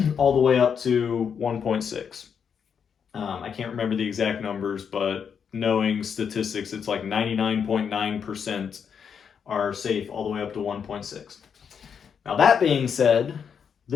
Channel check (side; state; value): right; quieter; 7.1 dB